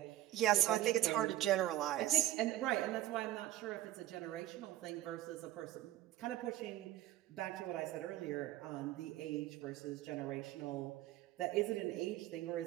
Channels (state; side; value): quieter; left; 14.1 dB